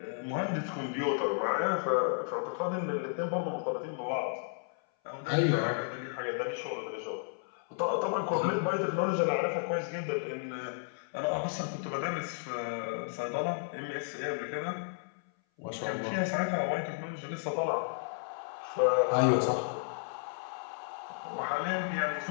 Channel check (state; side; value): silent; right; 56 dB below the other